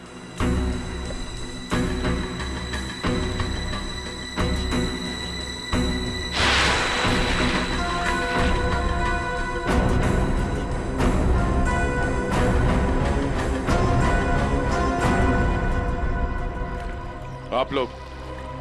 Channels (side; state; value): both; identical; correlation 1.00